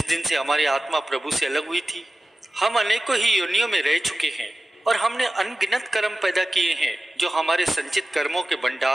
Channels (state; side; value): normal; both; correlation 0.95